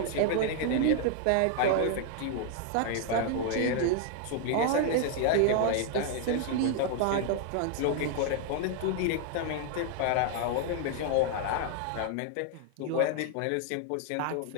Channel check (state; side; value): different; both; correlation 0.00